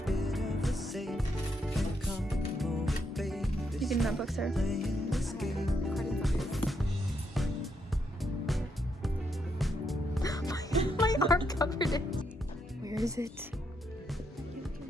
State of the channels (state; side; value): normal; both; correlation 0.78